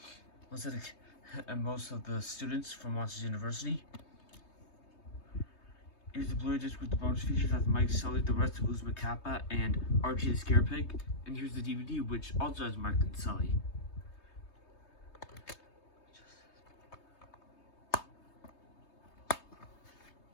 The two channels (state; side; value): late; right; 3.2 ms